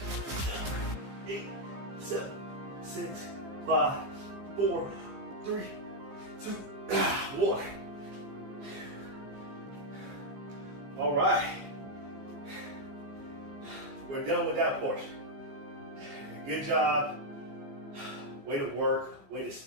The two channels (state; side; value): late; left; 15 ms